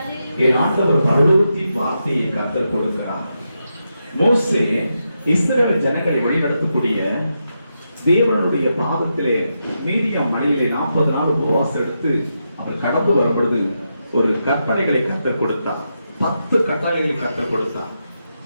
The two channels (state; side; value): inverted; both; correlation -0.85